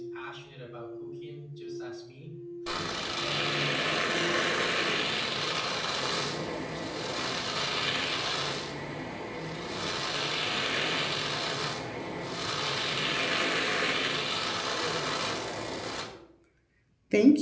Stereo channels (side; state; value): both; identical; correlation 1.00